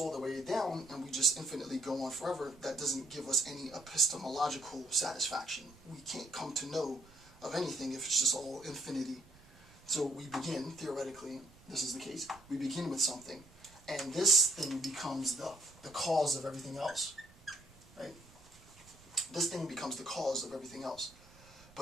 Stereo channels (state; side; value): noise; right; rumble, 24 dB below the sound